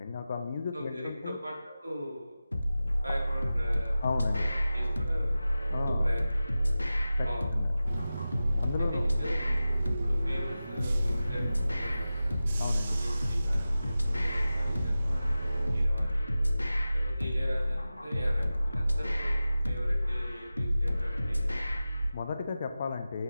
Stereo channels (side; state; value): both; inverted; correlation -0.95